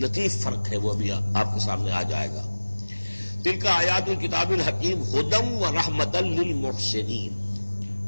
فرق ہے، وہ ابھی آپ کے سامنے آ جائے گا۔ تلک آیات الکتاب الحکیم ھدی ورحمۃ للمحسنین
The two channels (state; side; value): inverted; both; correlation -1.00